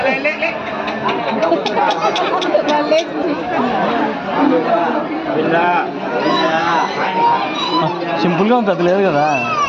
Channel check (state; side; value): identical; both; correlation 1.00